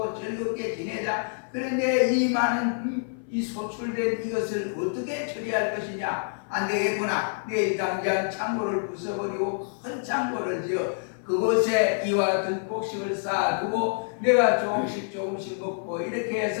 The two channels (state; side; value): silent; right; 58 dB below the other